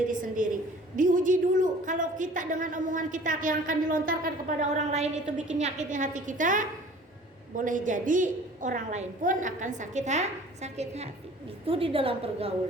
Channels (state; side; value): normal; both; correlation 0.48